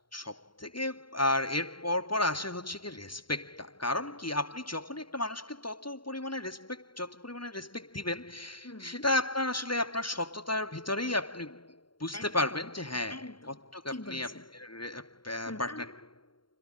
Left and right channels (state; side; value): late; right; 0.73 ms